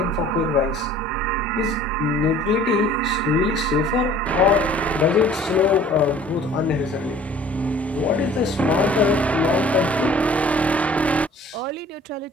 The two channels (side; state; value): both; normal; correlation 0.50